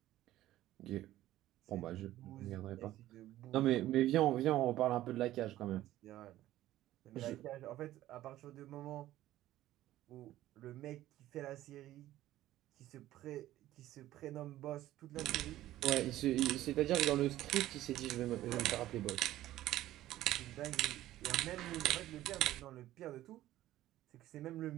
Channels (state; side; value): quieter; left; 14.5 dB